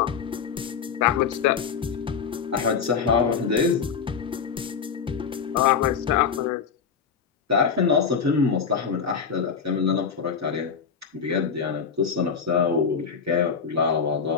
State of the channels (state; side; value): quieter; right; 6.4 dB